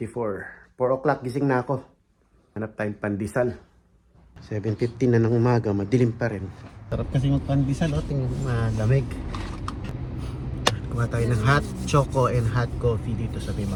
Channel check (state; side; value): identical; both; correlation 1.00